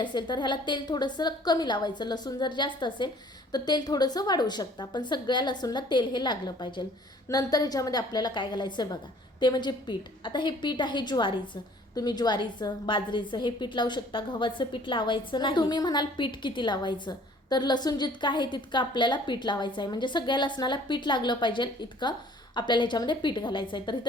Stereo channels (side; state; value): both; normal; correlation 0.54